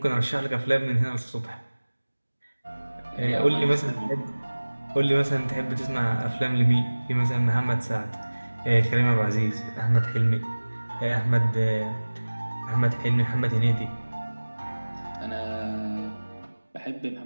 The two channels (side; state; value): both; inverted; correlation -1.00